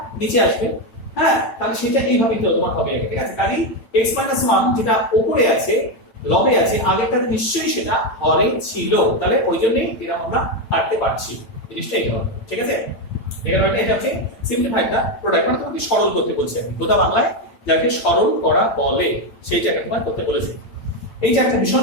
নিচে আসবে, হ্যাঁ তাহলে সেটা এইভাবেই তো তোমার হবে, ঠিক আছে? কাজে x - 1 যেটা উপরে আছে লবে আছে, আগেরটাতে নিশ্চয়ই সেটা হরে ছিল, তাহলে ওই জন্যই এটা আমরা কাটতে পারছি, জিনিসটা এইটা হবে, ঠিক আছে? এটা হচ্ছে সিম্পলিফাইড দা প্রোডাক্ট, মানে তোমাকে সরল করতে বলছি আমি, গোটা বাংলায় যাকে সরল করা বলে সেইটাকে তোমার করতে বলেছি। এই যে একটা ভীষণ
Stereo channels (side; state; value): right; late; 8.9 ms